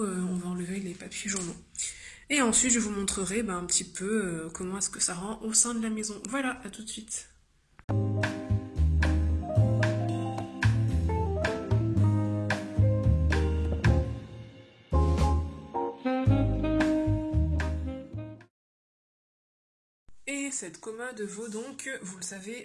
on va enlever les papiers journaux. Et ensuite, je vous montrerai un petit peu comment est-ce que ça rend au sein de la maison. Voilà, à tout de suite. Et cette commode vaut donc, vous le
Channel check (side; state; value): both; identical; correlation 1.00